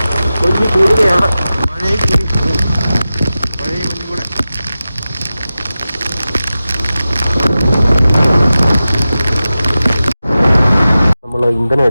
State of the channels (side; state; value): both; inverted; correlation -0.94